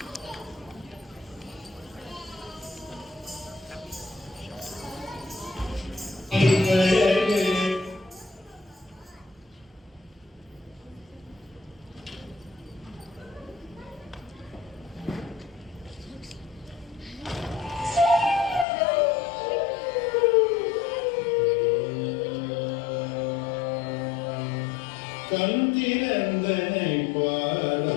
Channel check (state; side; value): drops out; right; at 18.7 s